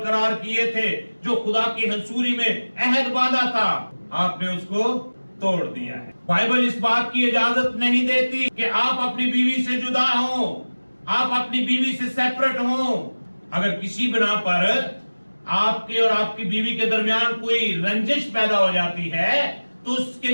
کیے تھے, جو خدا کی حضوری میں عہد باندھا تھا, آپ نے اس کو توڑ دیا ہے. بائبل اس بات کی اجازت نہیں دیتی کہ آپ اپنی بیوی سے جدا ہوں, آپ اپنی بیوی سے سیپریٹ ہوں. اگر کسی بنا پر آپ کے اور آپ کی بیوی کے درمیان کوئی رنجش پیدا ہو جاتی ہے تو اس کے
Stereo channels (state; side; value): inverted; both; correlation -1.00